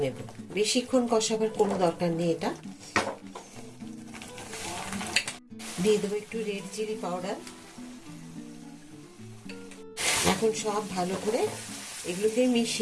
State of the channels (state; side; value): identical; both; correlation 1.00